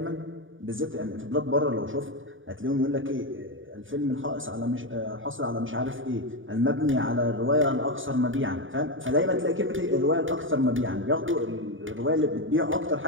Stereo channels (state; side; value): late; left; 0.57 ms